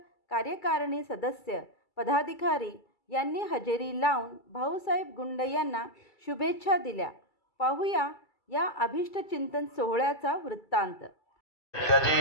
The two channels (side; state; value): right; late; 2.3 ms